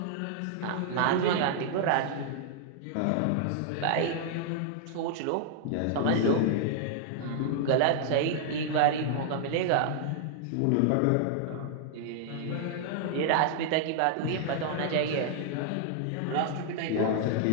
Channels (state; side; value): different; both; correlation -0.01